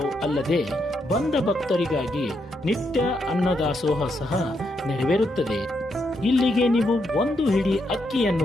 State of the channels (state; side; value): normal; both; correlation 0.80